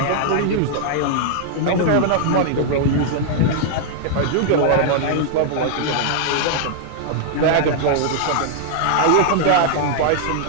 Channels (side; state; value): both; different; correlation -0.01